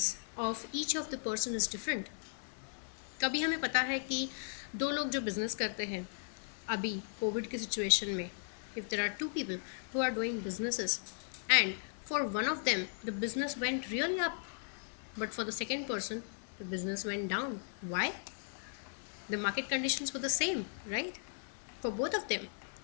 of each of the person is different. कभी हमें पता है कि दो लोग जो business करते हैं अभी कोविड की सिचुएशन में, if there are two people who are doing businesses, and for one of them the business went really up, but for the second person the business went down. Why? The market conditions were the same, right, for both of them.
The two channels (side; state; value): right; silent; digital silence